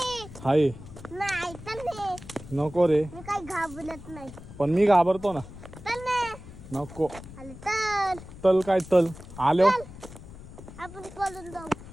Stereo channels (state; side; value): noise; left; rumble, 15 dB below the sound